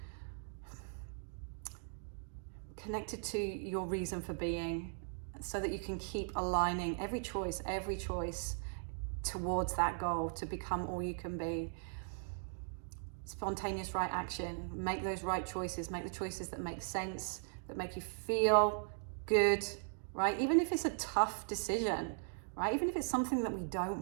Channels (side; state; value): left; silent; digital silence